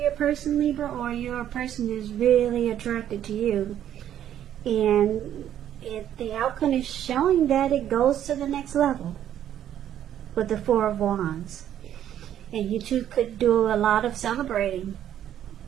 person, Libra, or your person is really attracted to you. And the outcome is showing that it goes to the next level with the Four of Wands. And you two could do a lot of celebrating.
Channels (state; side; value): quieter; left; 10.8 dB